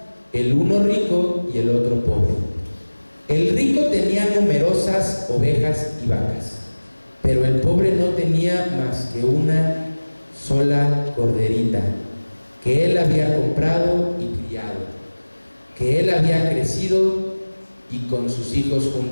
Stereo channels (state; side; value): inverted; both; correlation -1.00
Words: el uno rico y el otro pobre. El rico tenía numerosas ovejas y vacas, pero el pobre no tenía más que una sola corderita, que él había comprado y criado, que él había crecido y con sus hijos